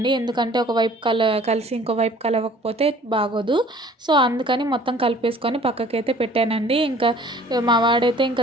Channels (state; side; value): normal; both; correlation 0.52